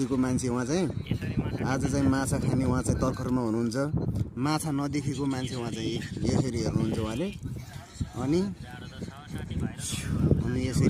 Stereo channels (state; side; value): identical; both; correlation 1.00